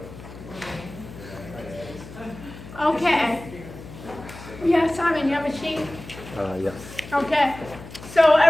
Okay. Yeah, Simon, you have a sheet? Yes. Okay. So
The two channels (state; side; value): noise; left; hum, 15 dB below the sound